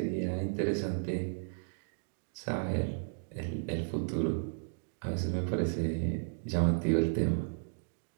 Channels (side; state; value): left; silent; digital silence